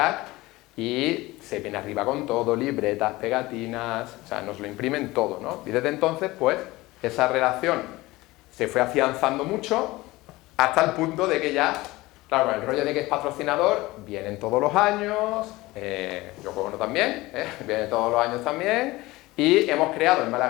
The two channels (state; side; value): quieter; right; 19.8 dB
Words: y se viene arriba con todo, libretas, pegatinas, o sea, nos lo imprimen todo, ¿no? Y desde entonces, pues, esa relación se fue afianzando mucho hasta el punto de que ya, claro, con el rollo de que es patrocinador, vienen todos los años, Yoko Ono también, viene todos los años también, y hemos creado en